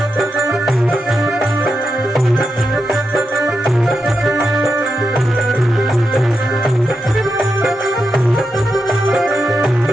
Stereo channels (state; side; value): normal; both; correlation 0.86